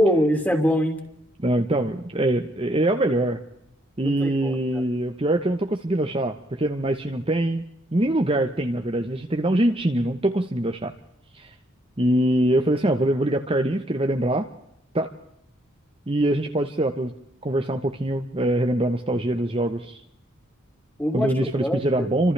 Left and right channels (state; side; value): normal; both; correlation 0.71